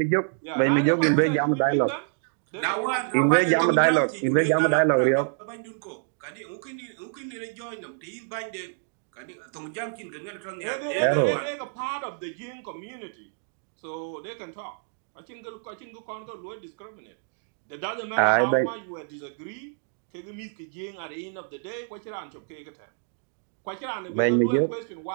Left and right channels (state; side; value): silent; left; digital silence